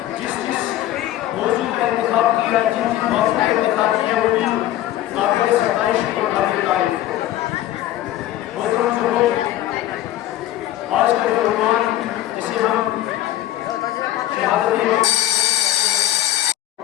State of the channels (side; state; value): right; quieter; 13.8 dB